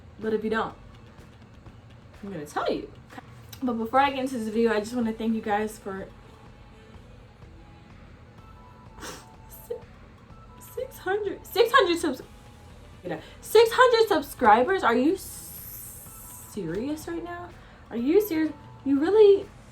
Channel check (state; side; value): identical; both; correlation 1.00